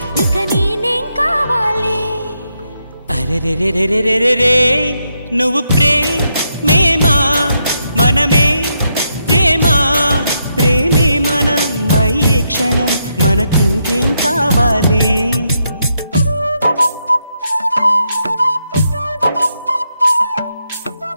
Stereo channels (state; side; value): inverted; both; correlation -0.80